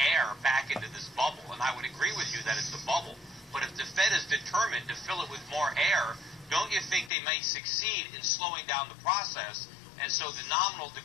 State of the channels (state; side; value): drops out; right; at 7.1 s